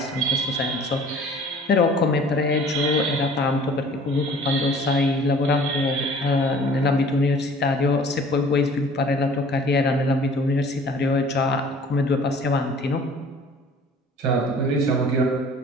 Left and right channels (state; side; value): normal; both; correlation 0.49